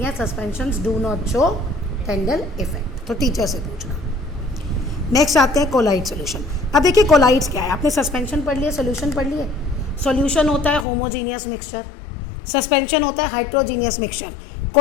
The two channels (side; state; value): right; drops out; at 10.9 s